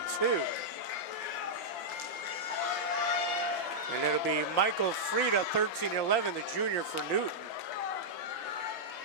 And it'll be Michael Frieda, 13-11, the junior for Newton.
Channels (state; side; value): late; right; 5.8 ms